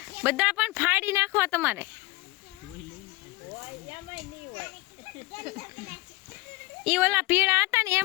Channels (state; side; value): quieter; right; 21.1 dB